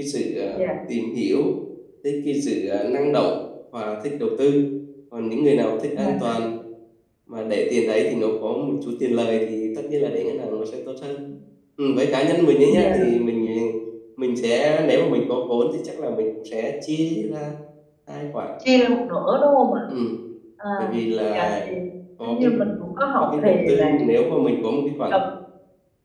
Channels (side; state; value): both; identical; correlation 1.00